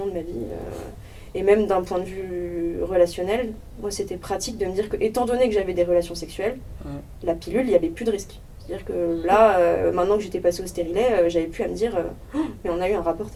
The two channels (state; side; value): identical; both; correlation 1.00